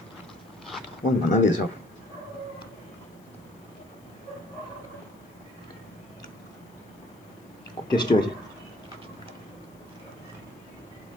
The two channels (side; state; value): left; noise; hiss, 29 dB below the sound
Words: কেমন বানাবে সব? খুব টেস্টি হয়েছে।